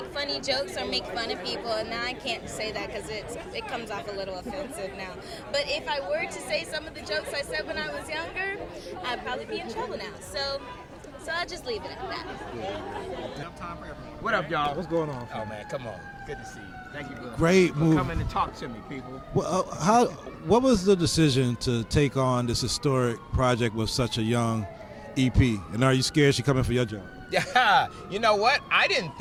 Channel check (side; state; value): both; identical; correlation 1.00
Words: funny jokes or make fun of people, and now I can't say that because it comes off a little offensive now. But if I were to say some of the jokes I said when I was younger, I'd probably be in trouble now. So I'll just leave it at that. What up, y'all? What's going on? Oh man, come on. Good to see you. Thank you for Great move. coming to talk to me, people. Well, what was the decision to take on this historic project with such a young EP? And are you scared she's coming for your job? Yeah, you know what? I didn't